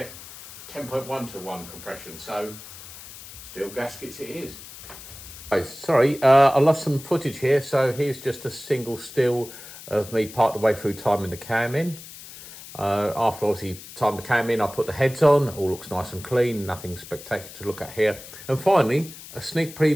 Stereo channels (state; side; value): noise; left; hiss, 15 dB below the sound